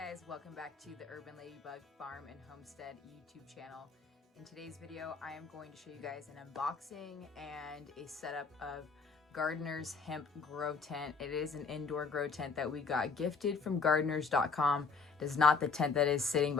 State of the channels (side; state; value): right; quieter; 4.7 dB